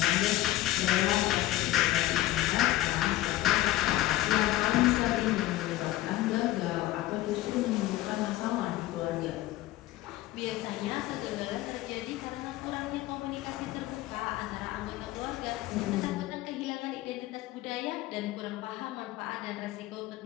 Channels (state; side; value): quieter; right; 16.0 dB